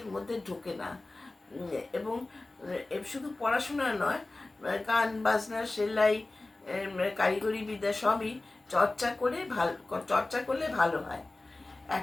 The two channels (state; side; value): quieter; right; 3.0 dB